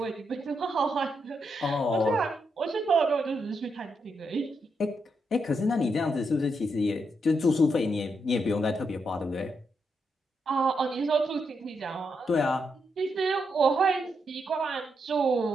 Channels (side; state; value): both; normal; correlation 0.81